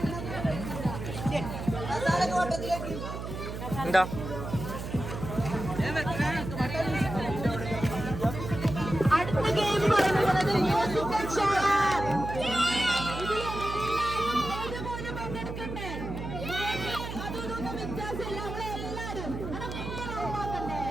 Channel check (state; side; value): noise; right; hum, 7 dB below the sound